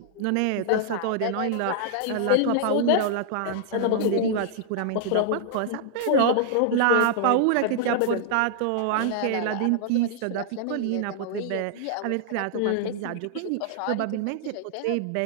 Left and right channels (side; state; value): both; different; correlation -0.01